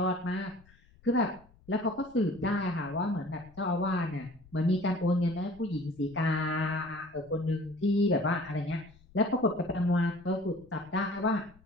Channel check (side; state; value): left; noise; rumble, 27 dB below the sound